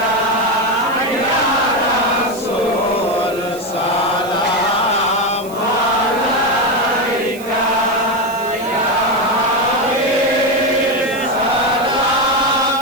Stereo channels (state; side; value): noise; right; hiss, 18 dB below the sound